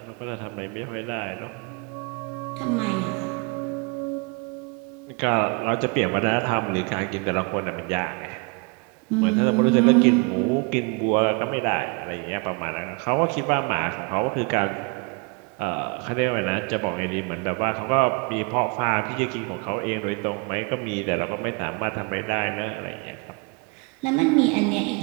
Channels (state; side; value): quieter; left; 31.7 dB